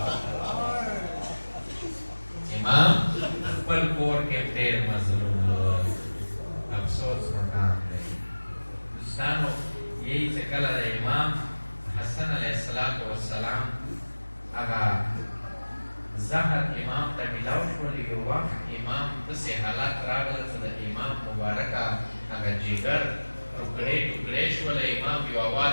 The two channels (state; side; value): inverted; both; correlation -1.00